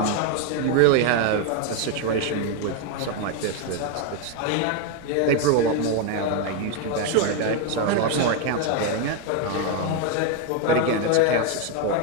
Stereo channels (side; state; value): both; different; correlation 0.01